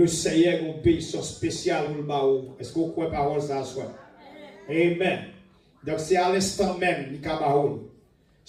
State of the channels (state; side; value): identical; both; correlation 1.00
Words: Seigneur a une bénédiction spéciale pour le baou. Est-ce que vous croyez parole ça soit? Amen. Donc, c'est à l'instant même, il y a baou.